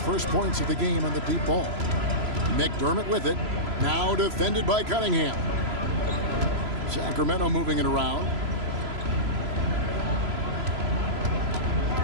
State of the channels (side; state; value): left; late; 3.0 ms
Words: points of the game on the deep ball. McDermott with it. Now defended by Cunningham. Sacramento moving it around.